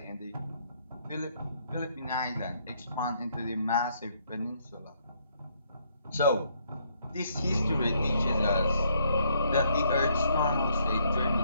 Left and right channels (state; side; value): inverted; both; correlation -0.70